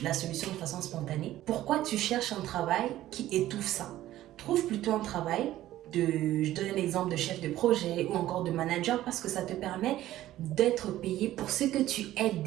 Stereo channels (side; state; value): left; quieter; 14.3 dB